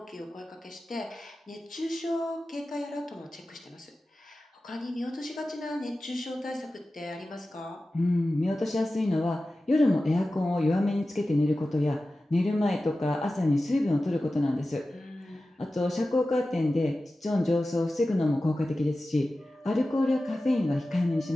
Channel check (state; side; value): normal; both; correlation 0.95